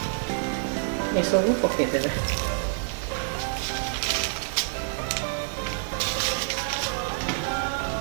ये सब पकईदेवे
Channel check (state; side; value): silent; left; digital silence